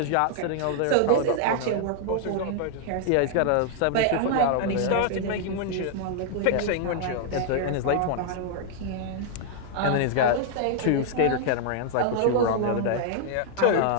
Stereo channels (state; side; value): different; both; correlation -0.01